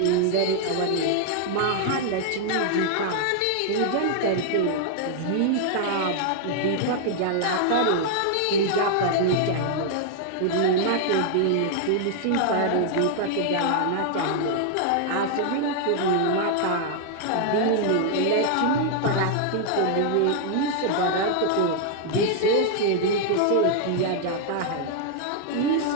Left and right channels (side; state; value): both; different; correlation 0.00